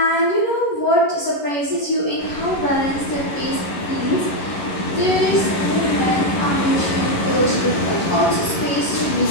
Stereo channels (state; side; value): late; right; 11 ms